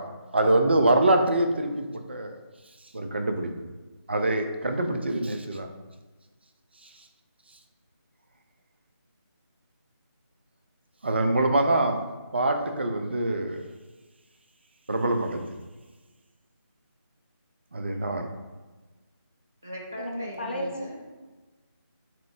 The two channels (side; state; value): both; inverted; correlation -0.75